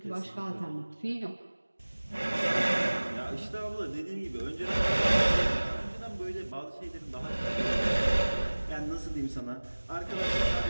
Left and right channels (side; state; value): both; inverted; correlation -1.00